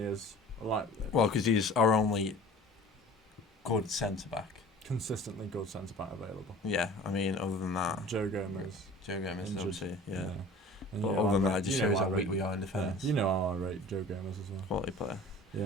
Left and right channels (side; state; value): both; normal; correlation 0.44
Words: is. Like Well, because he's our only good centre back. consistently good centre back available. Yeah, I mean, other than that, Joe Gomez. Joe Gomez, Injured. obviously, yeah. And But you know other than I that, rate- it just you know shows I how rate- weak we are in defence. You know how I rate Joe Gomez as well. Quality player.